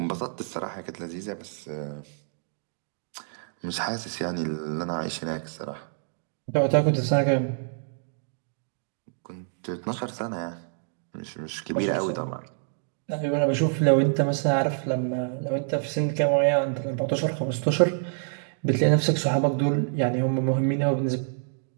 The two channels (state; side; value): silent; left; digital silence